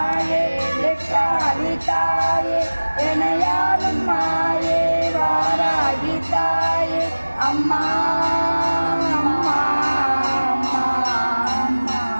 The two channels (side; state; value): both; inverted; correlation -1.00